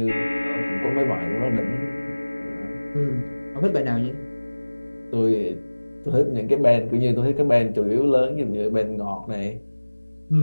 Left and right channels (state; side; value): inverted; both; correlation -1.00